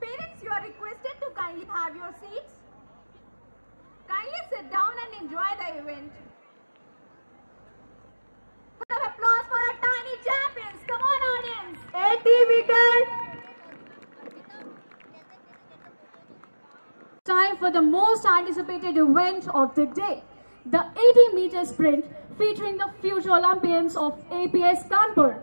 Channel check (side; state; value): both; inverted; correlation -1.00